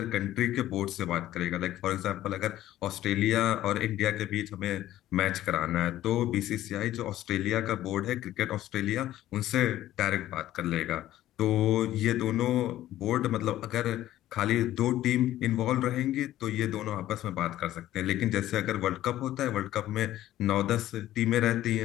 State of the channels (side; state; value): right; quieter; 13.9 dB